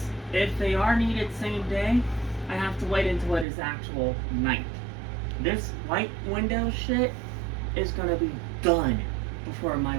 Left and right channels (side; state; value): left; drops out; at 3.5 s